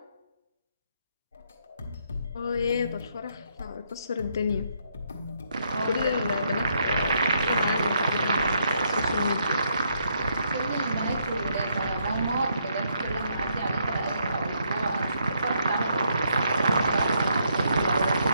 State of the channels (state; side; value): inverted; both; correlation -0.74